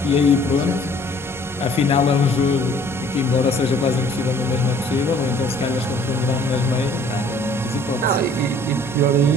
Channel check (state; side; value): normal; both; correlation 0.56